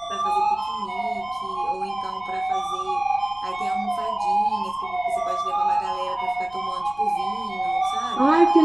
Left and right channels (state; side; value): noise; left; rumble, 24 dB below the sound